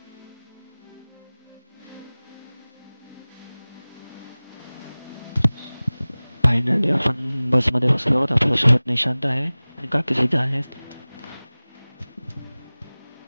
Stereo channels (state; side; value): inverted; both; correlation -0.99